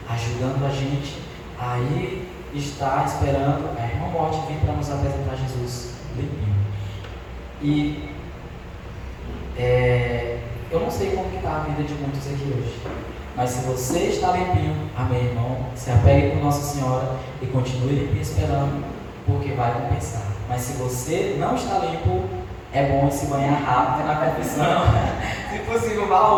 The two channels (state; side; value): identical; both; correlation 1.00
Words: ajudando a gente a ir estar esperando a Irmã Morte vir para nos apresentar Jesus limpinho. E eu não sei como está a vida de muitos aqui hoje, mas se você está limpinho, amém, irmão, se apegue com Nossa Senhora e continue limpinho esperando, porque vai compensar. Mas se você não está limpo, é bom se banhar rápido na confissão. Se possível, vá